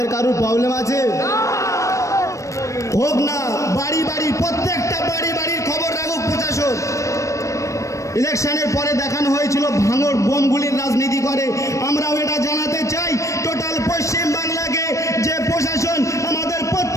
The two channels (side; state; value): right; late; 0.15 ms